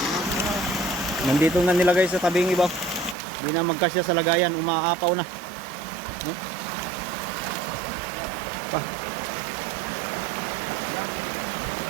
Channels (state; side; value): drops out; left; at 3.2 s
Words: Nandito na nilagay sa tabing iba. Hindi na magkasya sa lagayan, umaapaw na. Oh. Pa.